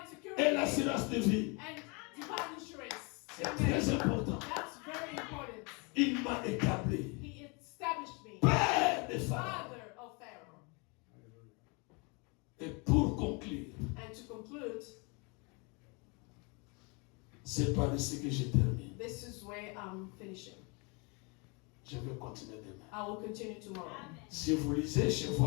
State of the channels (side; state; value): right; quieter; 31.2 dB